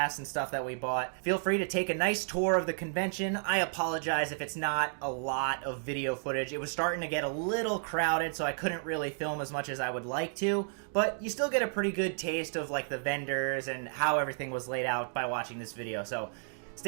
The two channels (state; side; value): silent; left; digital silence